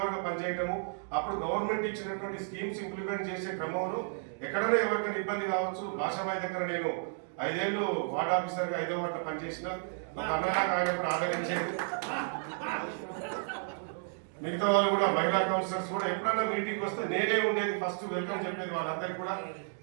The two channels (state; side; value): silent; left; digital silence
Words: గా పనిచేయటము, అప్పుడు గవర్నమెంట్ ఇచ్చినటువంటి స్కీమ్స్ ఇంప్లిమెంట్ చేసే క్రమంలో ఎక్కడైనా ఎవరికైనా ఇబ్బంది కావచ్చు. భాషాబాయి దగ్గర నేను 5 ఏళ్ళు వార్డ్ ఆఫీసర్ గా 5వ వార్డులో పనిచేసిన, ఒక అన్నలాగా ఆయన కూడా ఆదరించేది. మిగతా వాళ్ళు కూడా మహిళా కౌన్సిలర్స్ కూడా ఎప్పుడైనా మీటింగ్ వస్తే నేనే ఉండేది, ఫస్ట్ వెల్కమ్ చెప్పేది వాళ్ళందరికీ కూడా.